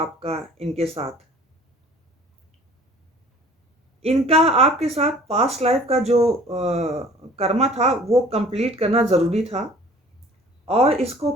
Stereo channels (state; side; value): normal; both; correlation 0.50